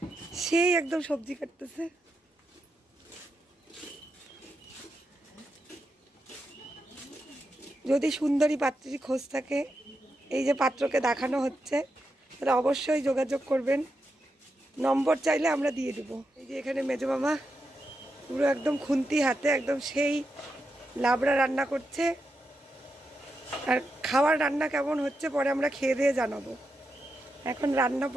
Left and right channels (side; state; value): both; normal; correlation 0.86